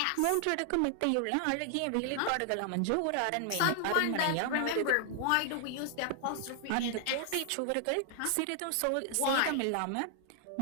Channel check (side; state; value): both; different; correlation 0.00